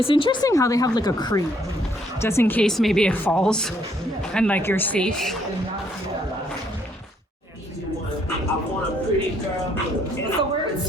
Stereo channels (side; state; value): both; normal; correlation 0.68